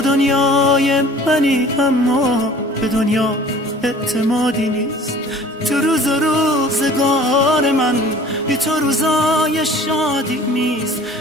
دنیای منی اما به دنیا اعتمادی نیست. تو روز و روزگار من بی تو روزای شادی نیست.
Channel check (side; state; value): both; normal; correlation 0.48